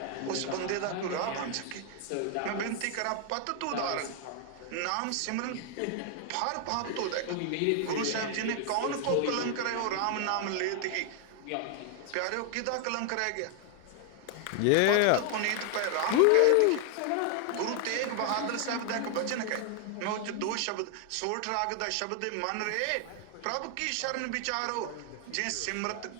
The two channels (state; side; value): different; both; correlation 0.00